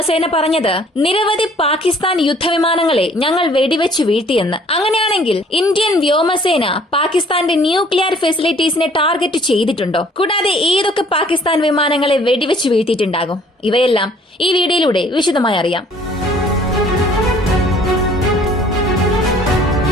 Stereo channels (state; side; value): normal; both; correlation 0.57